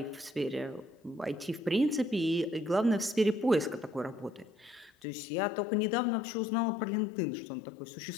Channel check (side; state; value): right; drops out; at 4.9 s